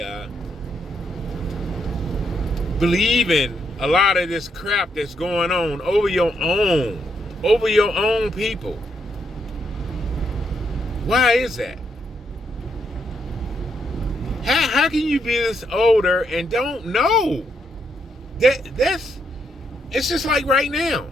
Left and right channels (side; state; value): both; normal; correlation 0.77